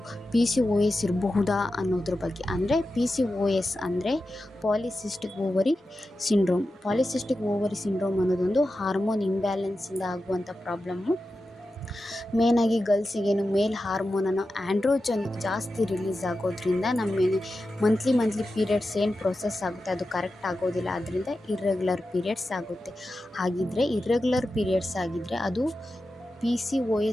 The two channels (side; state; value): both; normal; correlation 0.92